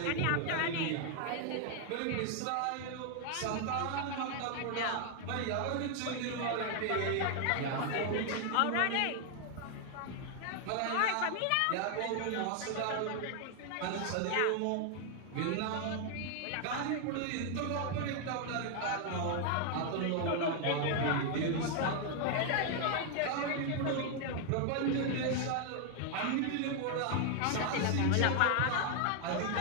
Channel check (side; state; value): both; different; correlation 0.00